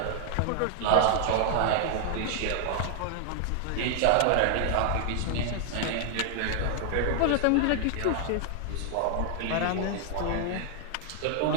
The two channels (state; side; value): different; both; correlation 0.00